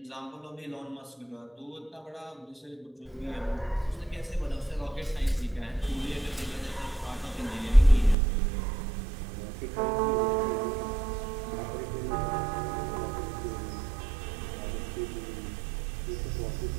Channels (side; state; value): left; drops out; at 8.2 s